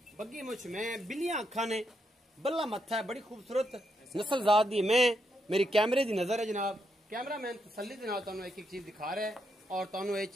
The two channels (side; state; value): both; normal; correlation 0.80